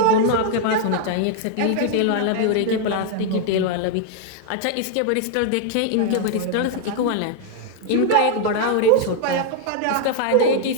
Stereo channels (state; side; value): different; both; correlation 0.00